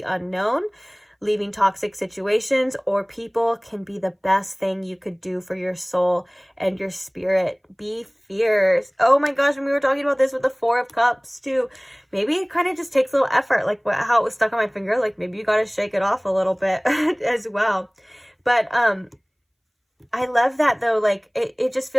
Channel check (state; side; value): identical; both; correlation 1.00